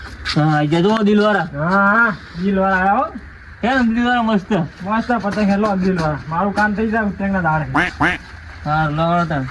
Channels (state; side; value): identical; both; correlation 1.00